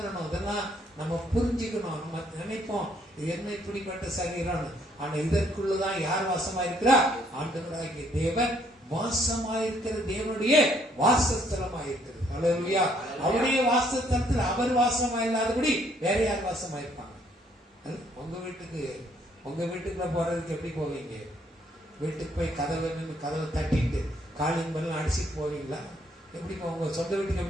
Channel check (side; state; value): both; normal; correlation 0.67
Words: இதெல்லாம் நம்ம புரிஞ்சுக்கணும். நம்ம நினைப்போம் இது என்ன இப்படிப்பட்ட சரீரம், ஆனா இதற்குள்ளதான் யார் வாசமா இருக்கிறா? ஆண்டவராகிய தேவன் வாசமாயிருக்கிற தேவனுடைய வாசஸ்தலமாயிருக்கிறது. அல்லேலூயா. அவருடைய வாசஸ்தலத்தில் அவர் வாசமா இல்லாதபடி வேற யார் வாசமாயிருப்பாங்க? உங்க வீட்டுக்குள்ள போறதுக்கு எப்படி போவீங்க? வீட்டுக்கு போய் கதவை தட்டிட்டு காலிங் பண்ணலாம் அடிச்சுட்டு போவீங்களா? எப்படி உங்க சொந்த வீட்டுக்கு